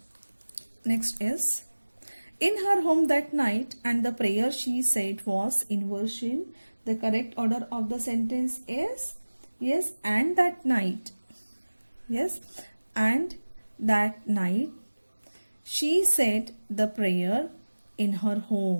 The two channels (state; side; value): inverted; both; correlation -1.00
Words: Next is in her home that night, and the prayer she said was inversion. The correct order of the sentence is yes, and that night. Yes, and that night she said the prayer in her